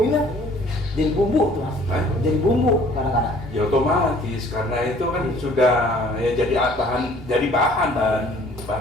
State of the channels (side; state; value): both; normal; correlation 0.55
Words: lah. Jadi bumbu tuh Mas. Hah? Jadi bumbu kadang-kadang. ya otomatis karena itu kan sudah ya jadi